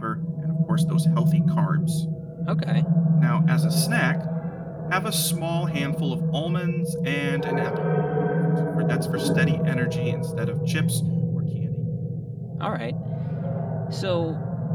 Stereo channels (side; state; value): both; identical; correlation 1.00